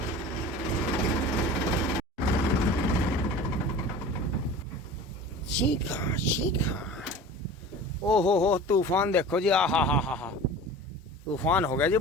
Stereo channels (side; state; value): both; normal; correlation 0.38